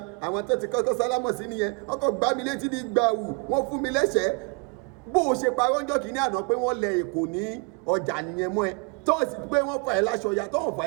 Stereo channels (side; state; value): left; quieter; 33.9 dB